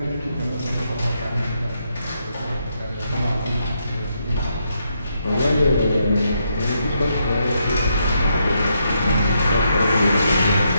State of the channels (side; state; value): both; inverted; correlation -0.79